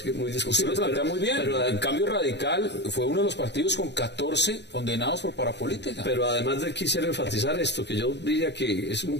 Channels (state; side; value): late; right; 0.50 ms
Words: que muy discutibles. Usted lo plantea muy bien, pero el Cambio Radical fue uno de los partidos con 14 condenados por parapolítica. Pero además de quisiera enfatizar esto, que yo diría que es un